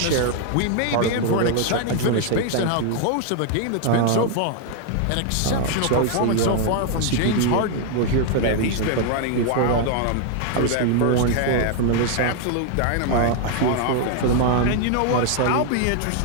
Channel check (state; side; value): different; both; correlation 0.00